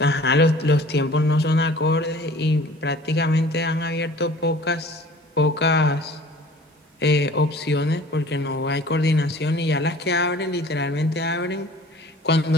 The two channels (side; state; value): both; normal; correlation 0.48